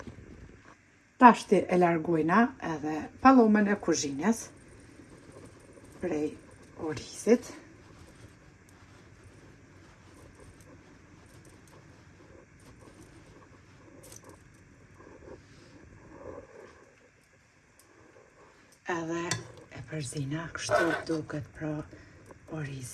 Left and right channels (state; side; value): identical; both; correlation 1.00